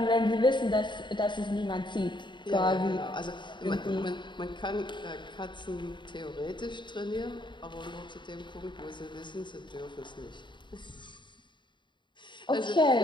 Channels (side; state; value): right; late; 0.23 ms